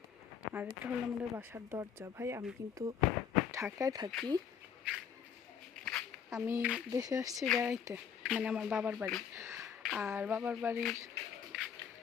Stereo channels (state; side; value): quieter; right; 7.6 dB